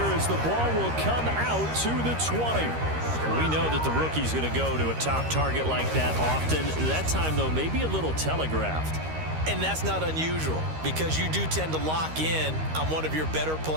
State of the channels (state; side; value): late; left; 13 ms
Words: as the ball will come out to the 20. We know that the rookie's going to go to a top target like that often. That time, though, maybe a little telegraphed. And that's not unusual because you do tend to lock in on one of your better